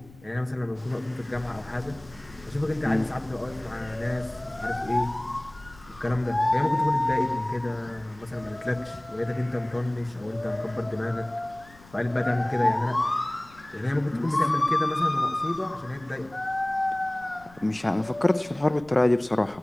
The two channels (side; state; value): left; noise; rumble, 24 dB below the sound